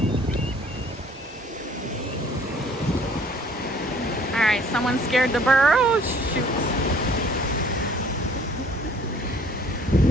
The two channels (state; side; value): normal; both; correlation 0.56